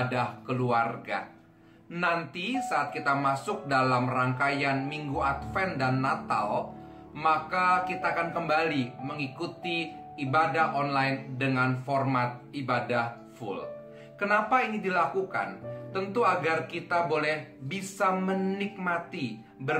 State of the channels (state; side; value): identical; both; correlation 1.00